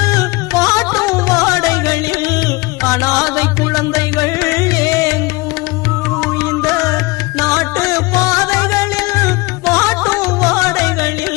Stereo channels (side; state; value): right; quieter; 23.8 dB